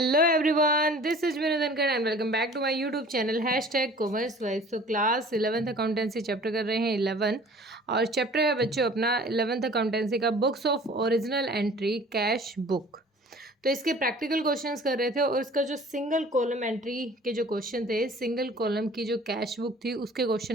everyone, this is Vinod Dhankhar and welcome back to my YouTube channel #commerce wise. तो class 11th accountancy chapter कर रहे हैं 11 और chapter है बच्चों अपना 11th अकाउंटेंसी का books of original entry cash book. तो इसके प्रैक्टिकल क्वेश्चंस कर रहे थे और इसका जो सिंगल कॉलम एंट्री के जो क्वेश्चन थे, सिंगल कॉलम की जो कैश बुक थी उसके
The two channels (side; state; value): both; normal; correlation 0.47